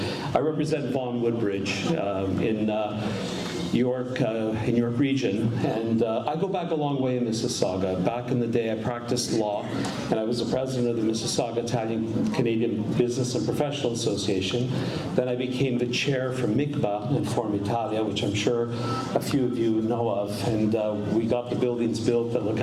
I represent Vaughan Woodbridge in York region, and I go back a long way in Mississauga. Back in the day, I practiced law, and I was the president of the Mississauga Italian-Canadian Business and Professional Association. Then I became the chair for MICBA and Form Italia, which I'm sure a few of you know of, and we got the buildings built that look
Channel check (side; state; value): both; identical; correlation 1.00